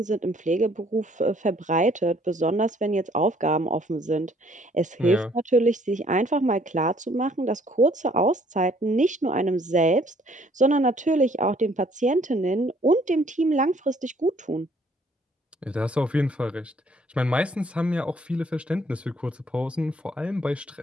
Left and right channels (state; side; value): normal; both; correlation 0.62